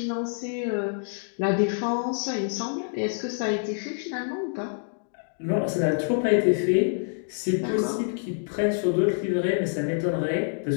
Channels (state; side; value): silent; right; digital silence